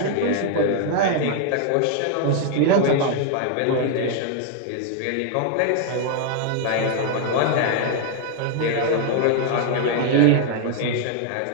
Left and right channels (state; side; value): different; both; correlation 0.00